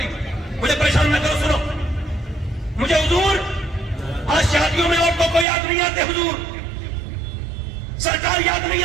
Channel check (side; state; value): left; drops out; at 5.5 s